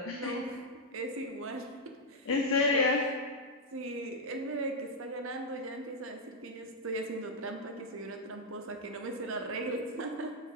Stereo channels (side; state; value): both; normal; correlation -0.02